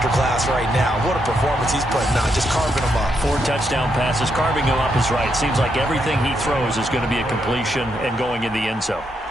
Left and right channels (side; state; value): both; normal; correlation 0.79